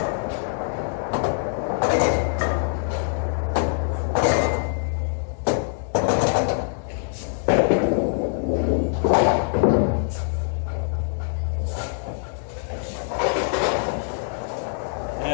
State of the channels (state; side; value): silent; right; digital silence